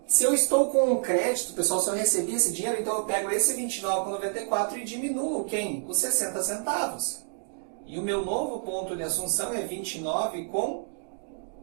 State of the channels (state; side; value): silent; left; digital silence